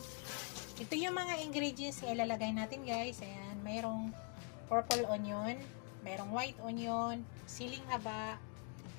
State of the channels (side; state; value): right; quieter; 37.5 dB